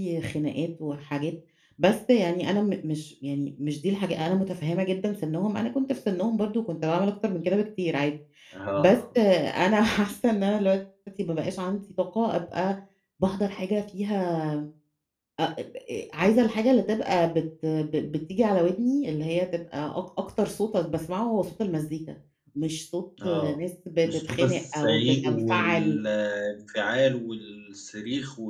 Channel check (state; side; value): identical; both; correlation 1.00